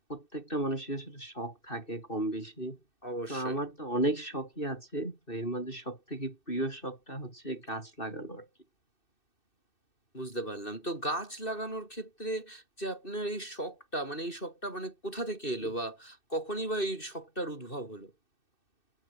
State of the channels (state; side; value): late; right; 2.6 ms